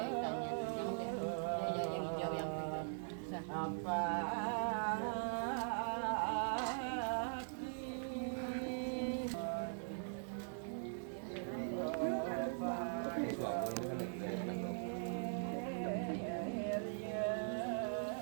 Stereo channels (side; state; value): left; silent; digital silence